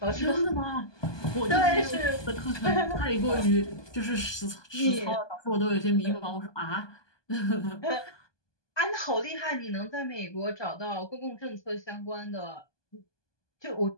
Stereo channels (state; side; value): late; right; 1.2 ms